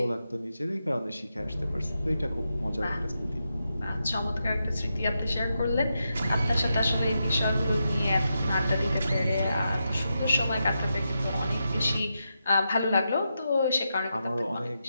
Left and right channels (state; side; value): inverted; both; correlation -0.86